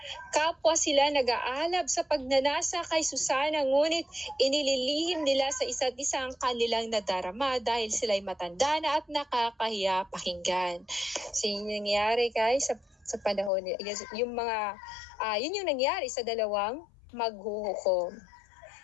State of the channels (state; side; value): drops out; right; at 13.5 s